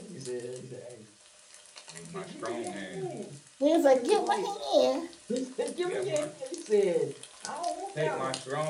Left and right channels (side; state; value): both; identical; correlation 1.00